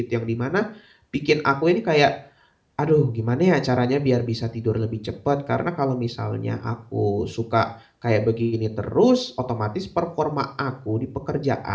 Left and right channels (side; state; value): both; identical; correlation 1.00